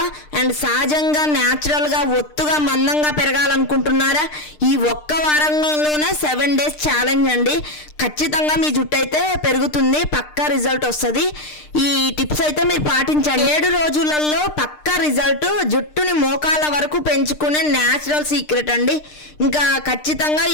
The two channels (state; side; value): late; right; 6.6 ms